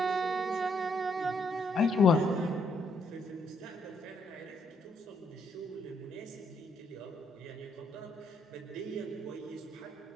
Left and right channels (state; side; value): normal; both; correlation 0.72